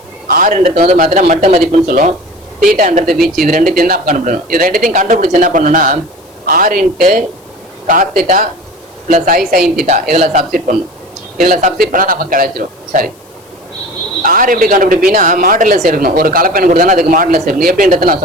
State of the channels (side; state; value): left; noise; hiss, 29 dB below the sound